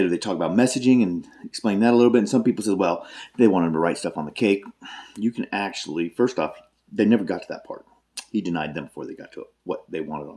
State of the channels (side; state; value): both; identical; correlation 1.00